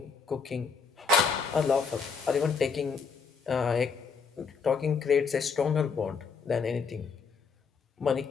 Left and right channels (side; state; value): right; quieter; 5.5 dB